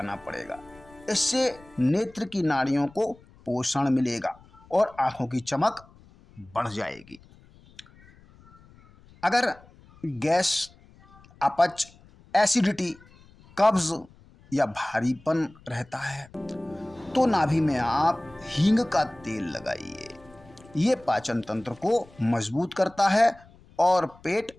पड़ेगा। इससे नेत्र की नाड़ियों को पोषण मिलेगा और आँखों की चमक बढ़ जाएगी। अगर गैस, अपच, एसिडिटी, कब्ज या भारीपन रहता है तो नाभि में आप हींग का तेल लगाइए। ये पाचन तंत्र को मजबूत करता है और पेट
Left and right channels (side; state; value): left; noise; rumble, 26 dB below the sound